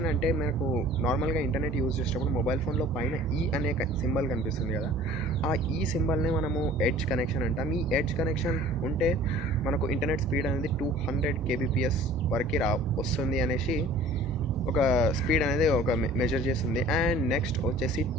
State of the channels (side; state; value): both; normal; correlation 0.48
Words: అంటే మనకు నార్మల్గా ఇంటర్నెట్ యూజ్ చేసేటప్పుడు మొబైల్ ఫోన్లో పైన ఈ అనే సింబల్ కనిపిస్తుంది కదా, ఆ ఈ సింబల్నే మనము ఎడ్జ్ కనెక్షన్ అంటాం. ఈ ఎడ్జ్ కనెక్షన్ ఉంటే మనకు ఇంటర్నెట్ స్పీడ్ అనేది 200 kbps వరకు వస్తుంది అనేసి ఒక స్పీడ్ అనేది ఒక మెజర్ చేస్తుంది. అండ్ నెక్స్ట్ వచ్చేసి